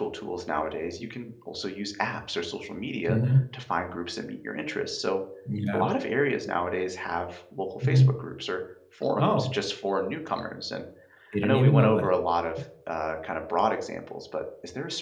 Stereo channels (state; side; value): identical; both; correlation 1.00